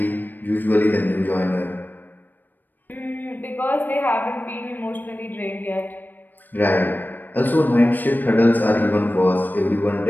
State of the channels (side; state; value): right; late; 0.090 ms